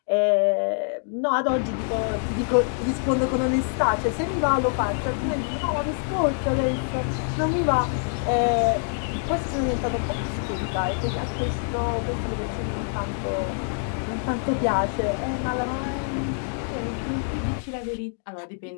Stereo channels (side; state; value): right; silent; 61 dB below the other